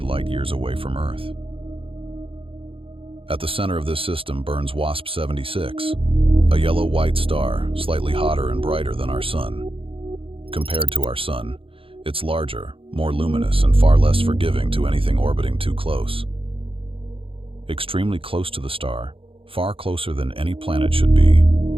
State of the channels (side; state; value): left; late; 0.26 ms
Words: away from Earth. At the center of this system burns WASP-76, a yellow-white star, slightly hotter and brighter than our Sun. Compared to our Sun, it's larger, more luminous, and far less forgiving to anything orbiting too close. Extremely close to the star, far closer than any planet should be,